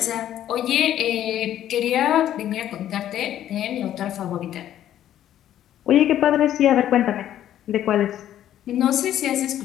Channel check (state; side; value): quieter; right; 11.6 dB